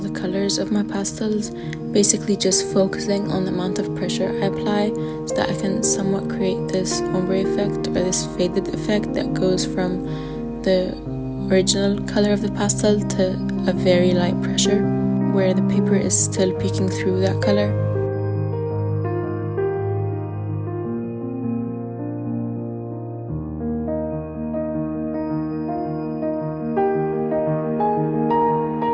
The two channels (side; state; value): both; identical; correlation 1.00